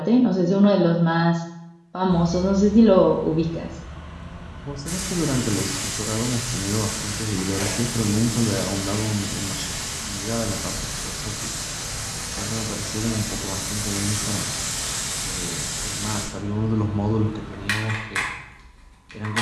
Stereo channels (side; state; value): both; identical; correlation 1.00